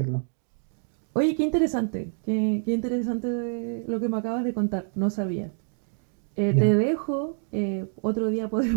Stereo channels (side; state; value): left; silent; 60 dB below the other